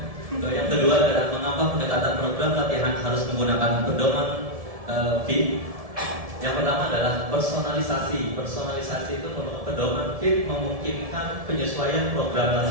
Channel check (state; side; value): late; left; 1.7 ms